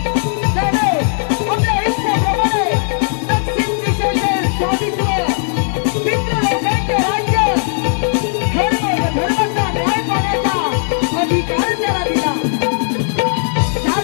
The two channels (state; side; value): silent; right; 69 dB below the other